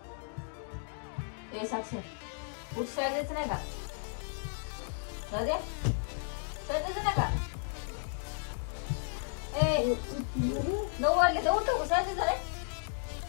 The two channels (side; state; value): right; silent; digital silence